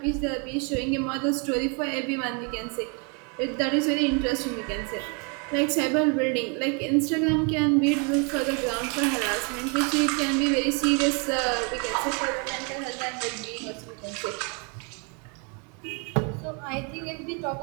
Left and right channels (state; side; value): quieter; left; 35.4 dB